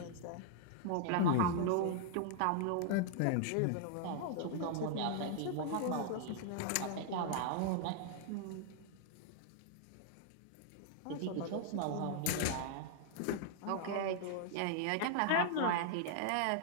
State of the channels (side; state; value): both; different; correlation -0.01